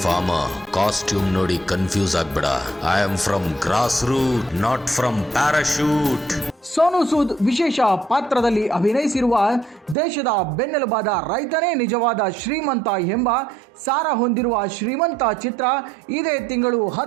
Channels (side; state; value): left; drops out; at 10.0 s